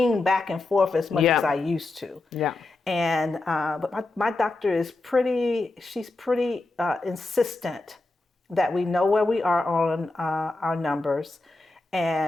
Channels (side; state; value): right; quieter; 3.1 dB